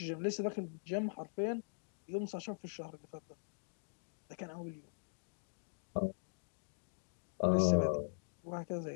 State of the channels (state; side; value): silent; right; digital silence